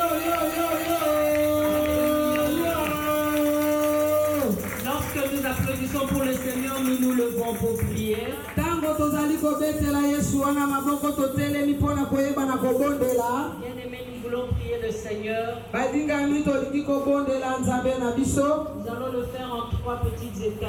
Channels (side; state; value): both; identical; correlation 1.00